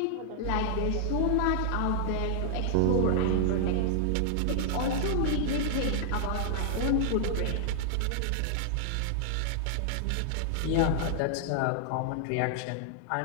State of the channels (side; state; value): both; different; correlation -0.01